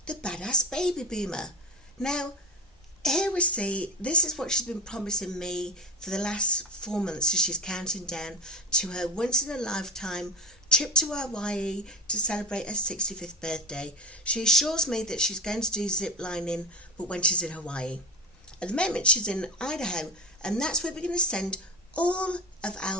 the badass baby boomer. Now, here we see, this is what she's been promising me for the last 4 months as she's counting down to her once-in-a-lifetime trip to Hawaii to celebrate her 65th birthday. She assures me that she's going to do zip lining, but when she's in Hawaii. At the moment, she's in Idaho, and that's where we're going to send all of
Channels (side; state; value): both; normal; correlation 0.23